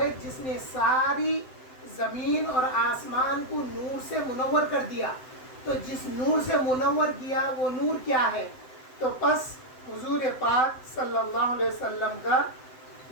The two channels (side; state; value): right; late; 7.8 ms